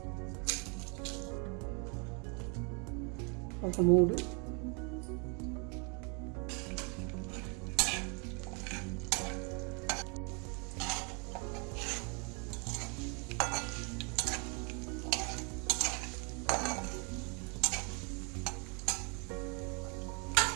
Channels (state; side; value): quieter; left; 34.6 dB